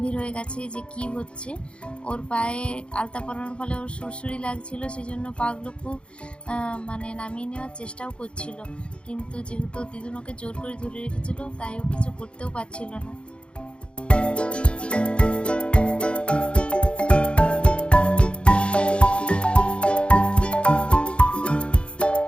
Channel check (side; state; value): right; late; 0.057 ms